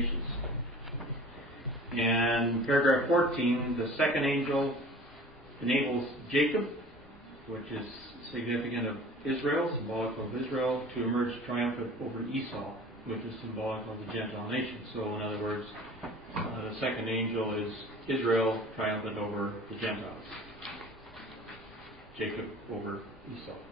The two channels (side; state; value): both; normal; correlation 0.44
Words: And paragraph 14, the second angel enables Jacob, which is significant of Israel, symbolic of Israel, to emerge triumphant over Esau, which is symbolic of the Gentile nations. So, in other words, the second angel is Israel triumphant over the Gentiles. Jacob over Esau.